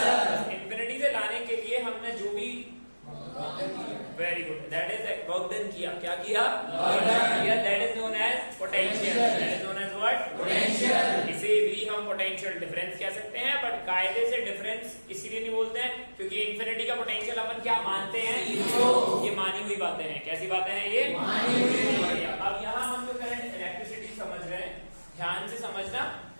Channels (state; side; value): inverted; both; correlation -1.00